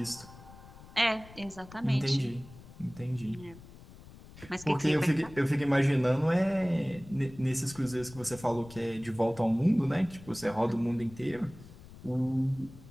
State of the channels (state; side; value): noise; left; rumble, 19 dB below the sound